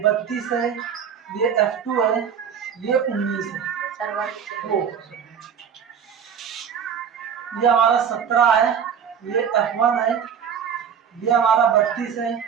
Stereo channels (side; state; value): left; quieter; 7.6 dB